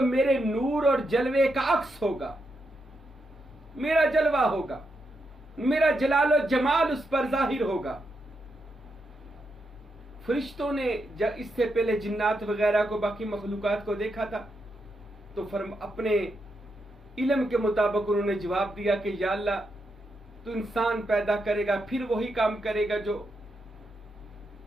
मेरे नूर और जलवे का अक्स होगा, मेरा जलवा होगा, मेरा जलाल और जमाल उस पर जाहिर होगा। फरिश्तों ने जब इससे पहले जिन्नात वगैरह को, बाकी मखलूकात को देखा था, तो अपने इल्म के मुताबिक उन्होंने जवाब दिया कि या अल्लाह, तू इंसान पैदा करेगा, फिर वही काम करेगा जो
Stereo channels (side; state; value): both; normal; correlation 0.83